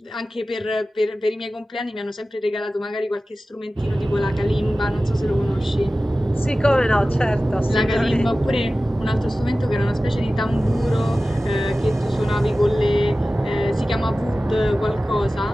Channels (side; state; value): both; normal; correlation 0.96